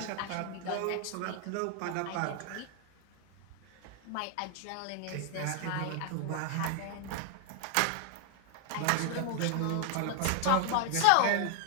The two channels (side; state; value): both; different; correlation 0.00